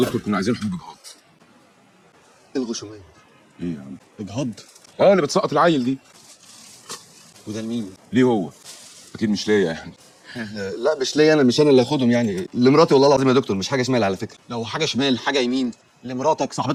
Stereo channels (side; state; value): both; identical; correlation 1.00